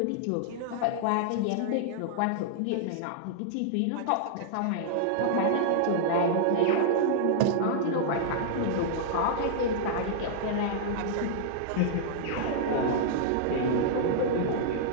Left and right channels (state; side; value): different; both; correlation -0.01